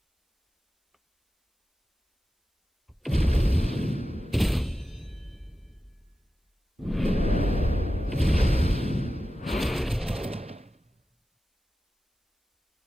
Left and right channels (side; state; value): both; normal; correlation 0.93